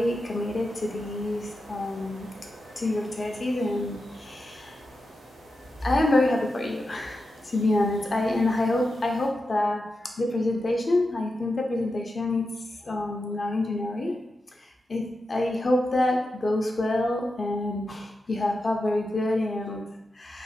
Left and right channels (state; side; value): normal; both; correlation 0.89